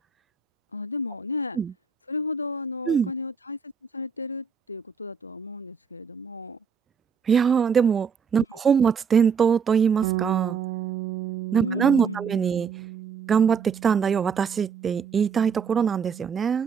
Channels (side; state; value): left; quieter; 6.2 dB